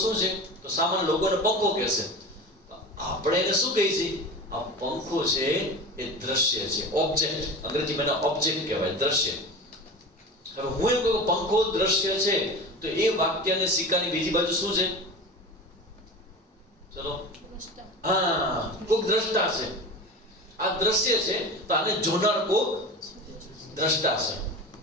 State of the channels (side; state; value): both; normal; correlation 0.31